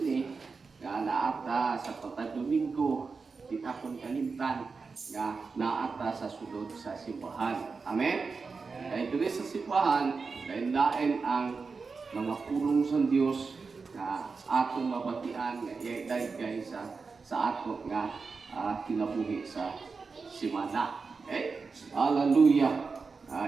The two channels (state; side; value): quieter; left; 4.7 dB